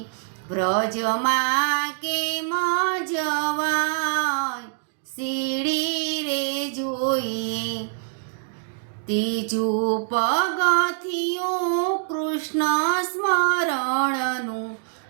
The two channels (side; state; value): left; silent; digital silence